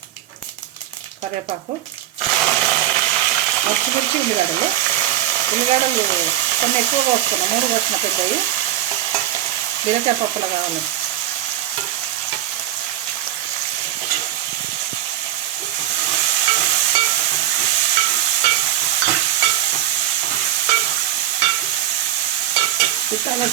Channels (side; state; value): left; quieter; 12.1 dB